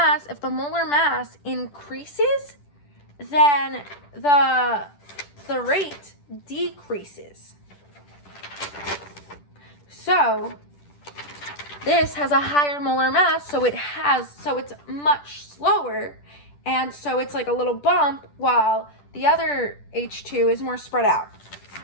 if the molar mass increases, then the rate decreases. So this has a higher molar mass, so it's much slower, and so it's like a little bump, while the other H2 is more spread out.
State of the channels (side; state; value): right; late; 10 ms